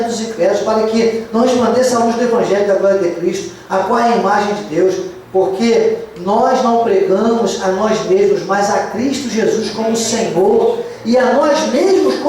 dos incrédulos, para que não resplandeça a luz do evangelho da glória de Cristo, a qual é a imagem de Deus, porque nós não pregamos a nós mesmos, mas a Cristo Jesus como Senhor, e a nós mesmos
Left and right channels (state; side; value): identical; both; correlation 1.00